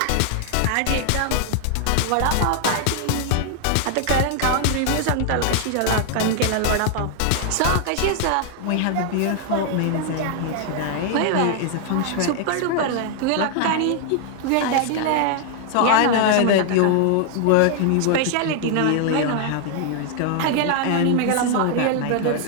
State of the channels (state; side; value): different; both; correlation 0.00